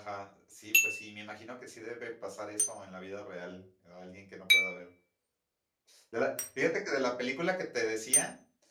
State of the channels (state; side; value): identical; both; correlation 1.00